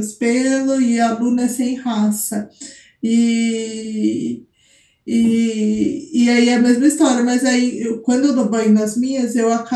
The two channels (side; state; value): both; identical; correlation 1.00